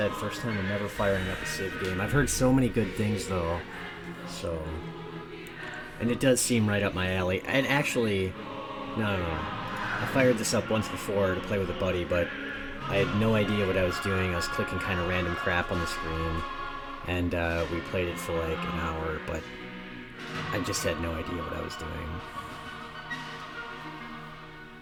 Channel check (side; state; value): both; identical; correlation 1.00